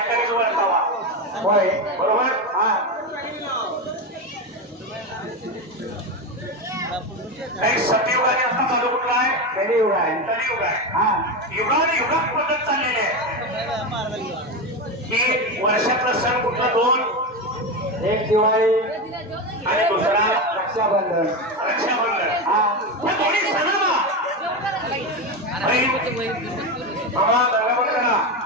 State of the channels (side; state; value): both; normal; correlation 0.16